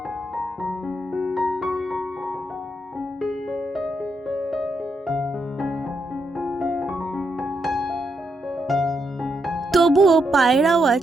তবুও পায়ের আওয়াজ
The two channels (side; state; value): both; normal; correlation 0.80